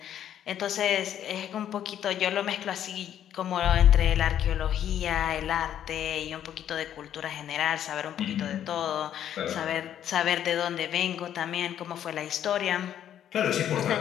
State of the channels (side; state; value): right; quieter; 10.4 dB